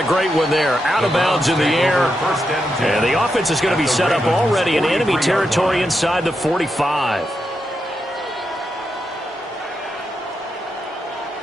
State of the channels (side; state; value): both; normal; correlation 0.85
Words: great one there. Out of bounds in the air. And the offense is going to be set up already in enemy territory inside the 45.